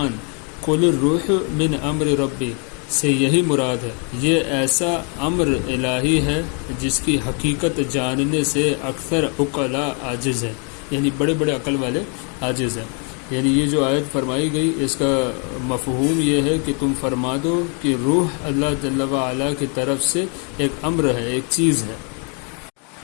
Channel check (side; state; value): right; quieter; 38.1 dB